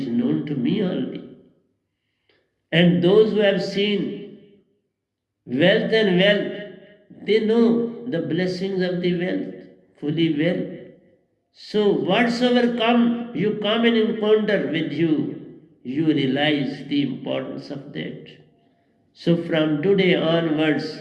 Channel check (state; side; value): identical; both; correlation 1.00